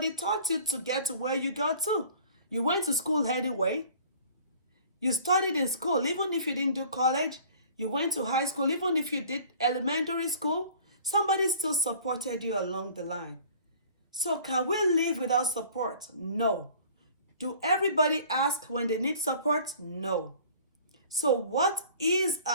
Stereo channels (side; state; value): both; inverted; correlation -0.49